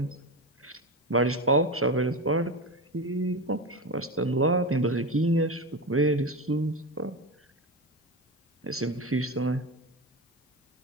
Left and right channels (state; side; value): normal; both; correlation 0.21